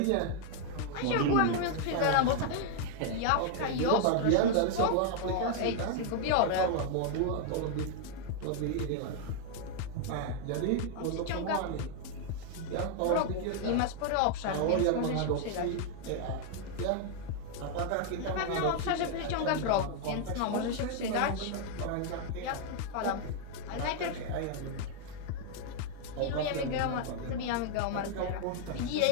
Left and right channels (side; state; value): both; different; correlation 0.00